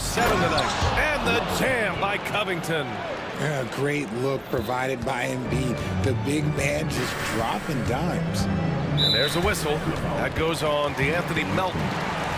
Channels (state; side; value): identical; both; correlation 1.00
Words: tonight. And the jam by Covington. A great look provided by Embiid. The big man just dropping dimes. And there's a whistle. That goes on DeAnthony Melton.